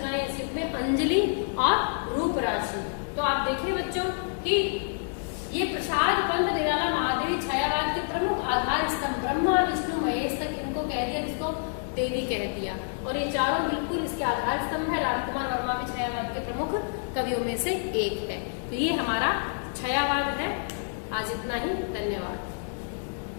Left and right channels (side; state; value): right; silent; 59 dB below the other